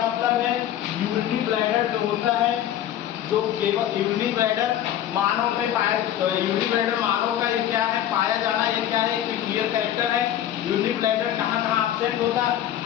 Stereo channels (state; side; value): quieter; right; 11.5 dB